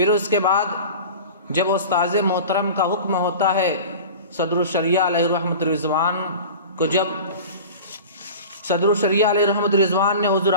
اس کے بعد جب استاذ محترم کا حکم ہوتا ہے صدر الشریعہ علیہ الرحمۃ الرضوان کو، جب صدر الشریعہ علیہ الرحمۃ الرضوان نے حضور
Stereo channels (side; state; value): both; inverted; correlation -0.36